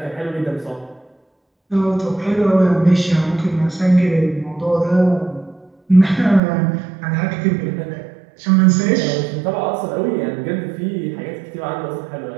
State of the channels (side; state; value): left; drops out; at 6.4 s